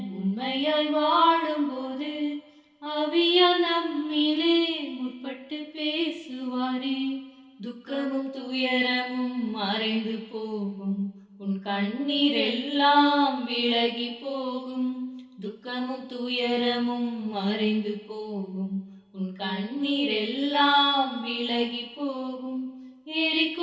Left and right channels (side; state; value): both; identical; correlation 1.00